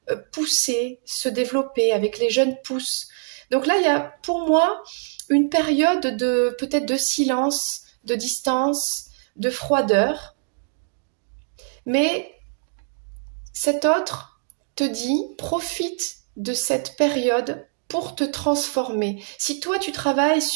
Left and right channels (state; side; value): silent; left; digital silence